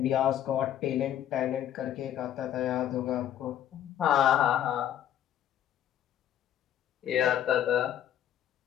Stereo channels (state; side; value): quieter; right; 11.0 dB